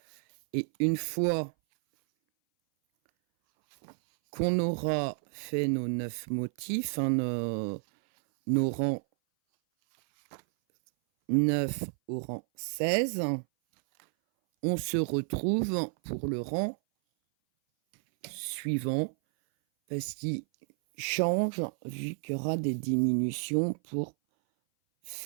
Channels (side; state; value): left; silent; 57 dB below the other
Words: Et une fois qu'on aura fait nos 9 motifs, nos rangs 9 au rang 16, on se retrouve pour le rang suivant, parce qu'il change vu qu'il y aura des diminutions pour